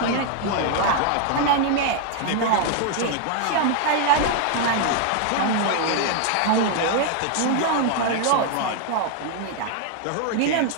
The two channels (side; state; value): both; different; correlation 0.00